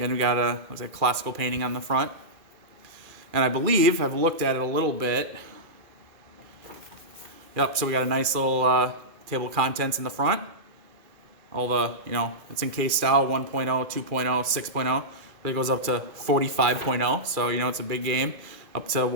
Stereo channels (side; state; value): left; late; 2.4 ms